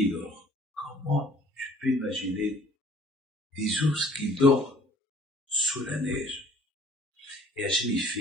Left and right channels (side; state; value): both; normal; correlation 0.54